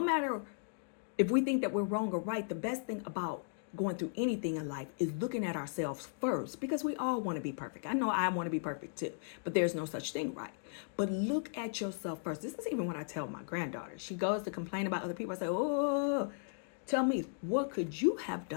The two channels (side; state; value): right; silent; digital silence